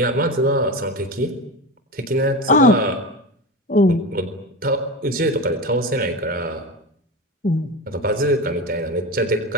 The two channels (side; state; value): both; normal; correlation 0.23